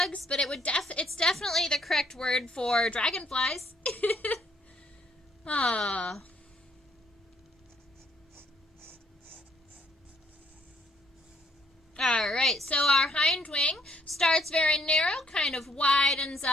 but it's definitely the correct word for dragonflies. Ah. All right, so our hind wing starts very narrow, kind of widens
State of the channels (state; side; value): normal; both; correlation 0.68